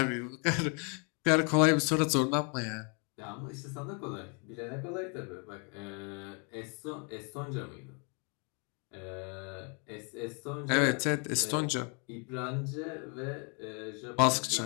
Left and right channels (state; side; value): quieter; right; 36.2 dB